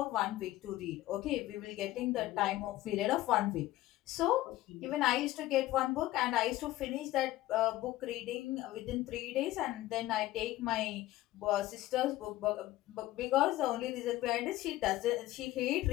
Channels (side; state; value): right; quieter; 16.2 dB